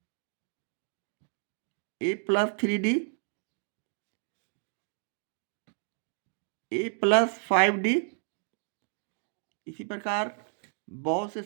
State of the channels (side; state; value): left; silent; 57 dB below the other